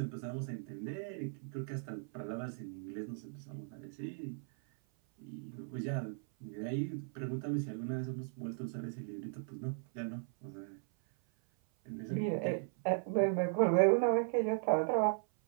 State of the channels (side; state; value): left; silent; 53 dB below the other